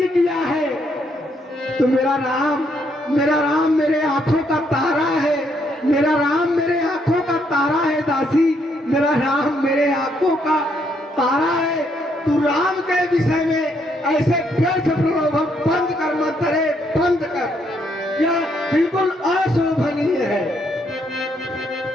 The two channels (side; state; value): both; normal; correlation 0.73